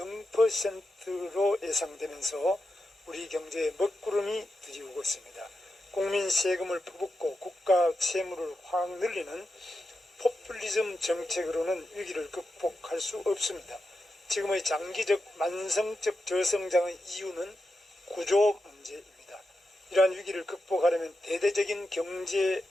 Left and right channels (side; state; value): both; normal; correlation 0.89